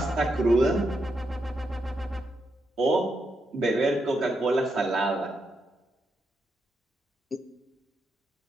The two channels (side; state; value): both; normal; correlation 0.82